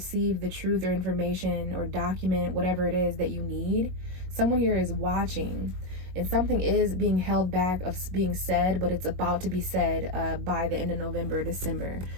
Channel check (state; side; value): late; left; 22 ms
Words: the truth or information or document, whatever it is that you need. Someone here is watching. And something is being held back of being said, but it's about to be said by the end of November, December.